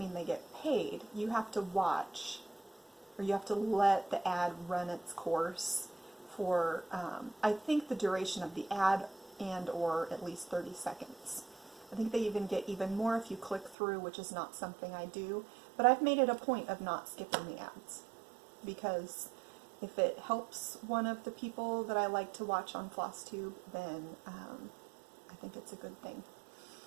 they get paid. You have to watch, or you have to let the ad run its course for, I think, the duration of the ad and or at least 30 seconds. I think they even get even more if you click through, which is not something I do, but I've made it a point of not skipping the ads because if it helps one of the people that I like to watch on Flosstube, then I think it's a good thing.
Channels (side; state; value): left; drops out; at 13.8 s